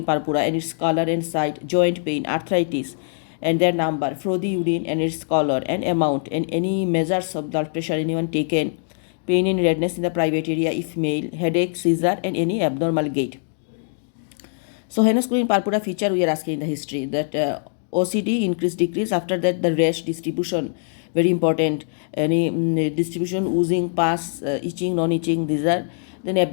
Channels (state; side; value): silent; right; digital silence